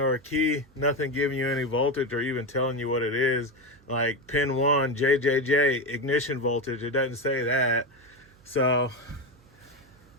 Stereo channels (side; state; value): right; noise; hum, 28 dB below the sound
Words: or a key, nothing giving you any voltage or even telling you what it is, like pin 1 JJJ ignition voltage, it doesn't say that. So